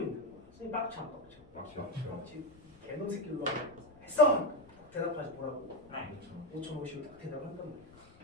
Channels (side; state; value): left; noise; rumble, 24 dB below the sound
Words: 거야. 선생님 빡쳐. 개놈 새끼로 했어! 대답하지 뭐라고. 5,050을 딱 대답을 한단 말이야.